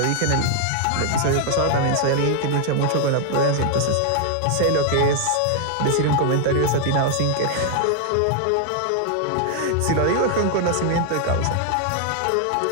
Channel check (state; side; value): different; both; correlation 0.00